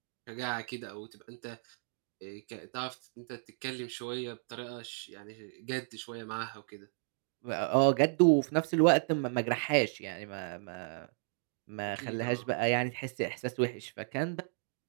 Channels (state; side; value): silent; left; digital silence